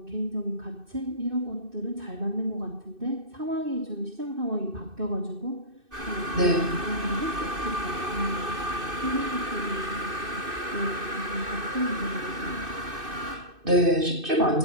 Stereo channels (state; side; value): late; left; 2.6 ms